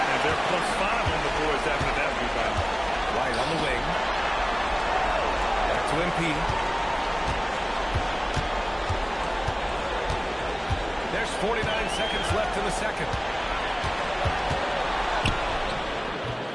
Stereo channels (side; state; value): both; identical; correlation 1.00